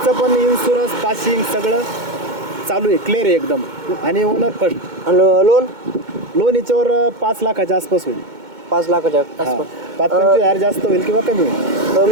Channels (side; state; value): left; late; 2.2 ms